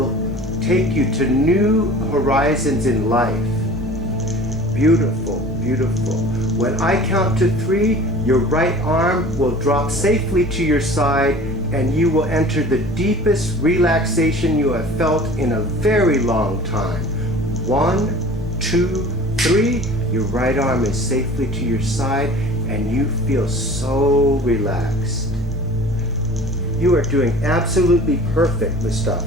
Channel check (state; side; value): normal; both; correlation 0.43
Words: take you to new horizons in life. Beautiful, beautiful. When I count to 3, your right arm will drop safely to your side and you will enter the deepest relaxation you have felt in a very long time. 1, 2, 3. Your right arm is safely to your side and you feel so relaxed. You are doing absolutely perfect,